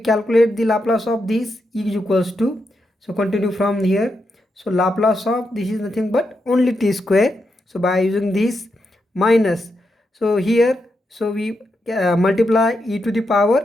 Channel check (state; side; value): normal; both; correlation 0.84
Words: the Laplace of this is equals to, so continue from here, so Laplace of this is nothing but only t square, so by using this minus, so here so we multiply e to the